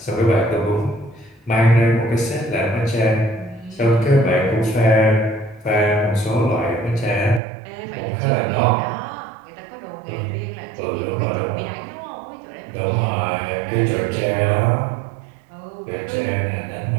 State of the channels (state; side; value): drops out; left; at 7.4 s